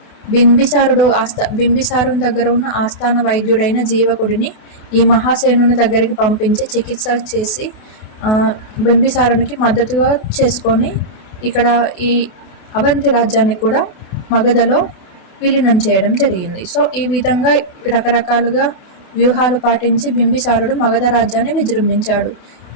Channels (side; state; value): right; late; 28 ms